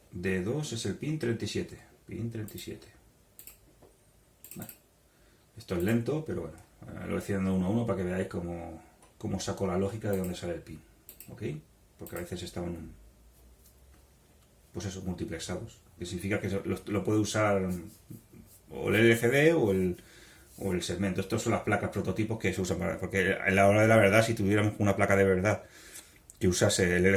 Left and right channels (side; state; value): both; identical; correlation 1.00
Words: D2 es el pin 37. Pin 37. Esto es lento, pero bueno, lo voy haciendo uno a uno para que veáis cómo saco la lógica de dónde sale el pin. ¿Ok? Porque a veces estaban, pues eso, multiplexados. Que significa que lo puede usar o el LCD o el segmento. Estas son las placas prototipos que se usan para... Porque a la hora de la verdad, si tuviéramos una placa de verdad que usase el